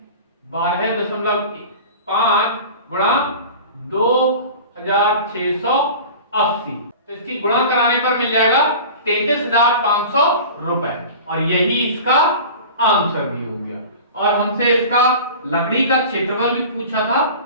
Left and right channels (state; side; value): inverted; both; correlation -0.37